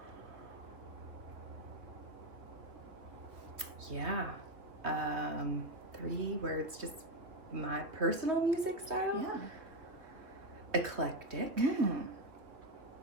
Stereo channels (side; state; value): left; late; 3.0 ms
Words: Yeah, 3 words, just my personal music style. Yeah. Eclectic.